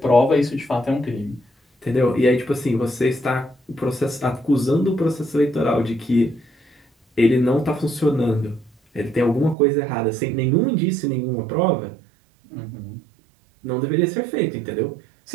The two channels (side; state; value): left; drops out; at 9.6 s